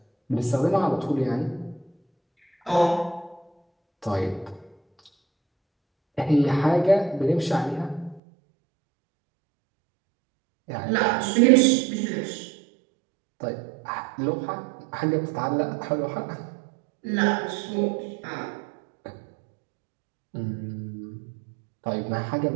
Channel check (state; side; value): drops out; left; at 8.2 s